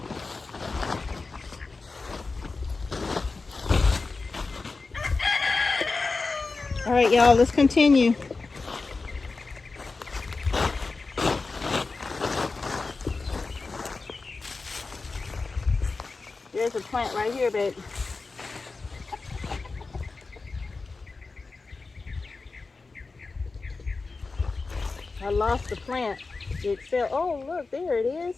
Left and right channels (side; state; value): right; quieter; 4.0 dB